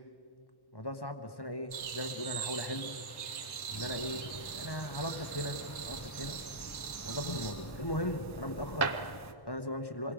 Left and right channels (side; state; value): right; late; 1.1 ms